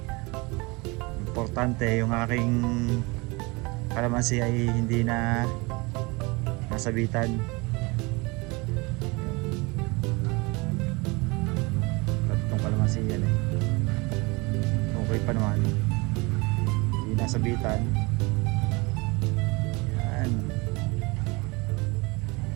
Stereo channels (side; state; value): left; quieter; 26.2 dB